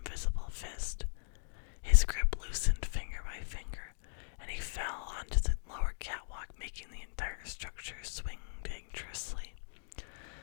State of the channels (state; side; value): silent; right; digital silence